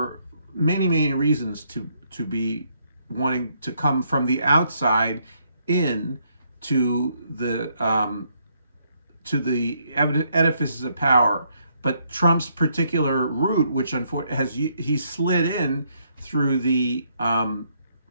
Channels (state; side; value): inverted; both; correlation -0.72